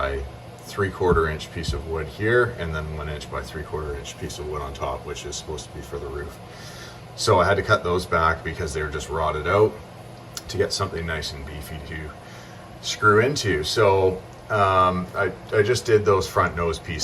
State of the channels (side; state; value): both; identical; correlation 1.00